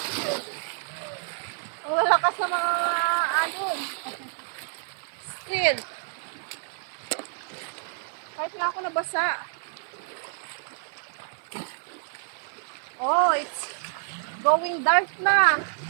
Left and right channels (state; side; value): silent; left; digital silence